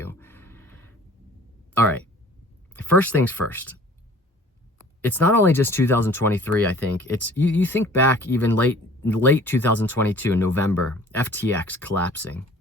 All right, first things first. It's not only just 2023, I think. It's you think back even late 2022 in November, FTX collapsing.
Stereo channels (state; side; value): normal; both; correlation 0.49